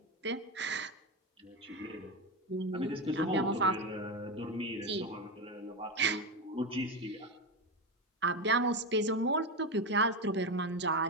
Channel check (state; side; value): normal; both; correlation 0.14